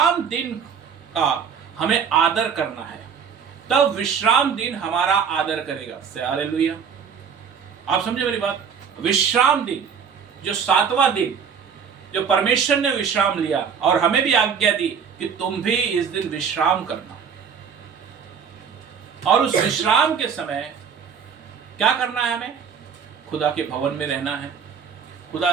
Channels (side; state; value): left; quieter; 6.8 dB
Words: दिन का हमें आदर करना है, तब विश्राम दिन हमारा आदर करेगा। से हालेलुया। आप समझे मेरी बात? विश्राम दिन, जो 7वां दिन, जो परमेश्वर ने विश्राम लिया और हमें भी आज्ञा दी कि तुम भी इस दिन विश्राम करना। और उस विश्राम के समय क्या करना है? हमें खुदा के भवन में रहना है, खुदा